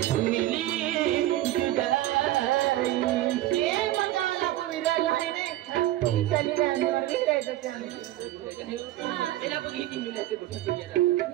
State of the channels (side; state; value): left; quieter; 15.0 dB